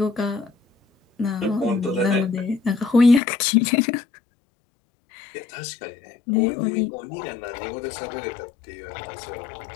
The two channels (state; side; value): drops out; right; at 3.2 s